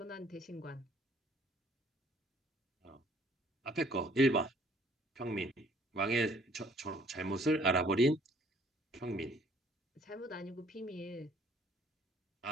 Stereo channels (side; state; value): both; normal; correlation 0.59